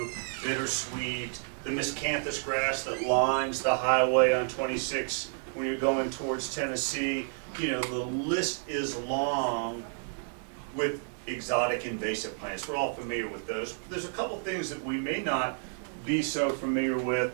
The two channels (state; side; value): silent; left; 57 dB below the other